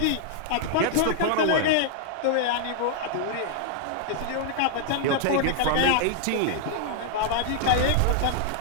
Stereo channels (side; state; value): both; different; correlation 0.00